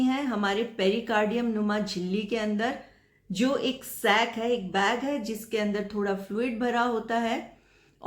हैं हमारे पेरिकार्डियम नुमा झिल्ली के अंदर, जो एक सैक है, एक बैग है जिसके अंदर थोड़ा फ्लूइड भरा होता है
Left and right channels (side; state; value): both; identical; correlation 1.00